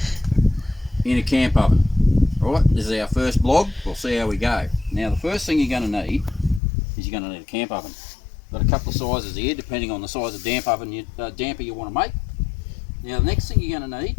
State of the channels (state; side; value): drops out; right; at 6.6 s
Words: in a camp oven. Right, this is our first blog, we'll see how we go. Now the first thing you're going to need is you're going to need a camp oven. Got a couple of sizes here depending on the size of damper you want to make. Now the next thing you're going to need,